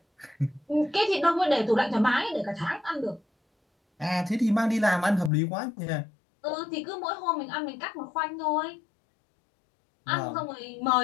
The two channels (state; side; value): drops out; right; at 5.3 s